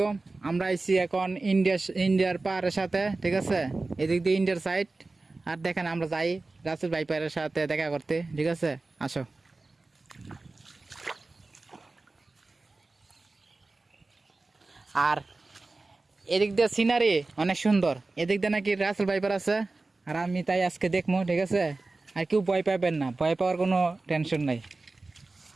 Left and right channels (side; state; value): left; quieter; 3.4 dB